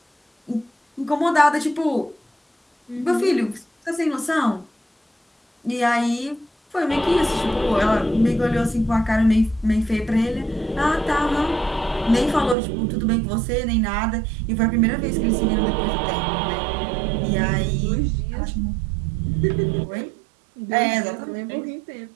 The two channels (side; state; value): left; drops out; at 12.6 s